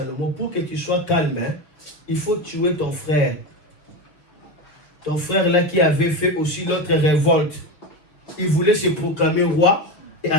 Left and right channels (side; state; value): right; late; 6.2 ms